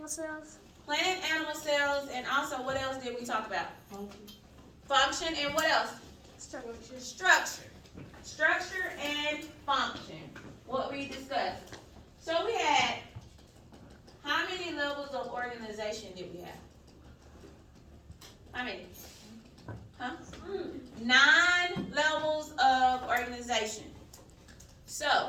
cells. Plant and animal cells, and also what else did we talk about? Function and what else? Structure. Structure and function. What we discussed. So we had, how many levels of organization did we have? How many? Huh? 9 levels of organization. So,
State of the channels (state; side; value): identical; both; correlation 1.00